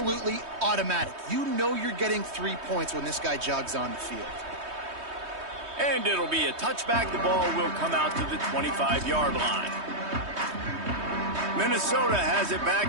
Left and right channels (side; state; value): left; late; 3.2 ms